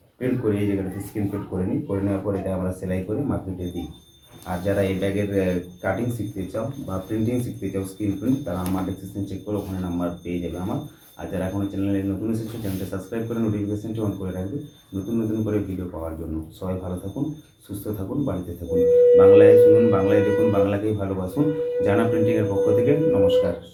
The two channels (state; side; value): identical; both; correlation 1.00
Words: প্রিন্ট করে এই জায়গাটাতে স্ক্রিন প্রিন্ট করে নিই। করে নেওয়ার পর এটা আমরা সেলাই করে মার্কেটে দিই। আর যারা এই ব্যাগের কাটিং শিখতে চাও বা প্রিন্টিং শিখতে চাও স্ক্রিন প্রিন্ট, তারা আমার ডেসক্রিপশন চেক করে ওখানে নাম্বার পেয়ে যাবে আমার। আর যারা এখনও চ্যানেলে নতুন এসেছে চ্যানেলটা সাবস্ক্রাইব করে নোটিফিকেশনটি অন করে রাখবে নতুন নতুন করে ভিডিও পাওয়ার জন্য। সবাই ভালো থাকুন, সুস্থ থাকুন, বাড়িতে থাকুন। বাংলায় শুনুন, বাংলায় দেখুন, বাংলাকেই ভালোবাসুন। জানা প্রিন্টিংয়ের পক্ষ থেকে নমস্কার,